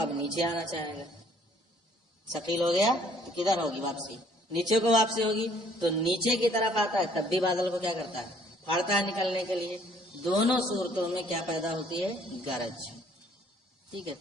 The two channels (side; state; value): both; normal; correlation 0.61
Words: نیچے آنا چاہے گا. ثقیل ہو گیا تو کدھر ہوگی واپسی؟ نیچے کو واپسی ہوگی. تو نیچے کی طرف آتا ہے تب بھی بادل کو کیا کرتا ہے؟ پھاڑتا ہے نکلنے کے لیے. دونوں صورتوں میں کیا پیدا ہوتی ہے؟ گرج. ٹھیک ہے.